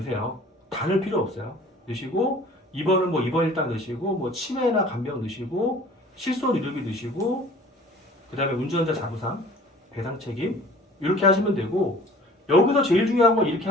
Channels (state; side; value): normal; both; correlation 0.47